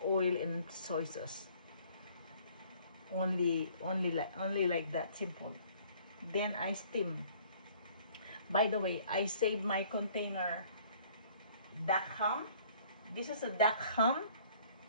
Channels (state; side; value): inverted; both; correlation -0.56